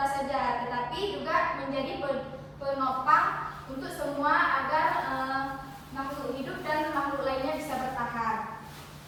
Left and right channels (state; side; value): identical; both; correlation 1.00